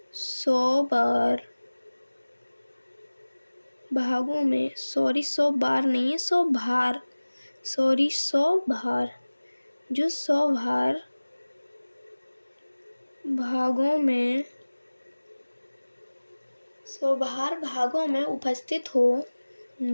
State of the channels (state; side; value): inverted; both; correlation -1.00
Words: 100 भागों में, 100 बार नहीं है, 100 भार, 100 भार, जो 100 भागों में 100 भागों में उपस्थित हो